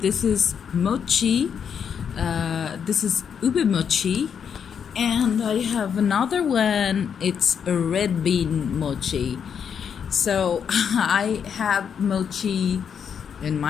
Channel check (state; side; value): quieter; right; 7.4 dB